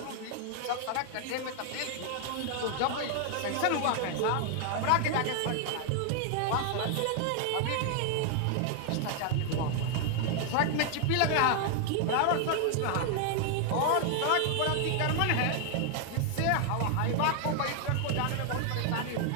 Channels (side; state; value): both; different; correlation 0.00